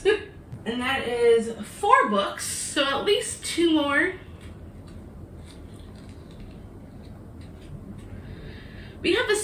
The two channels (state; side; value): identical; both; correlation 1.00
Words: And that is 4 books, so at least 2 more. We have a